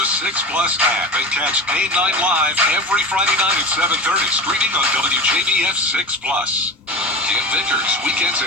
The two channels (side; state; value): both; normal; correlation 0.29